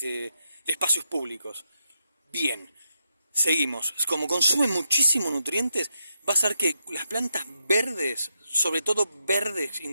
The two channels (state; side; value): inverted; both; correlation -0.84